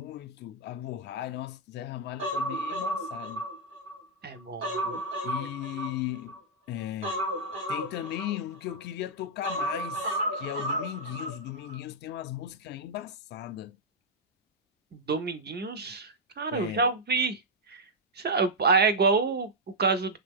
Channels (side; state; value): both; normal; correlation -0.06